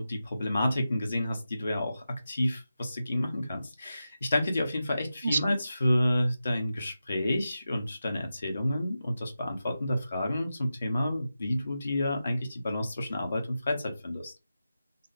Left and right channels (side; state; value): both; inverted; correlation -0.90